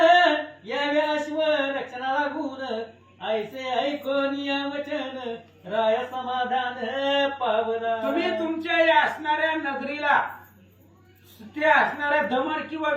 यावे अश्व रक्षणा लागून ऐसे ऐकून या वचन राय समाधान पावला. तुम्ही तुमच्या या असणाऱ्या नगरीला ते असणाऱ्या दमन किंवा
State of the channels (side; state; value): both; identical; correlation 1.00